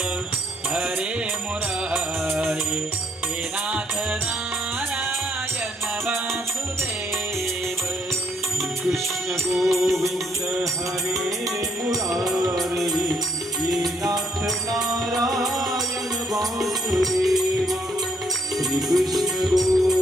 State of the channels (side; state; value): both; normal; correlation 0.72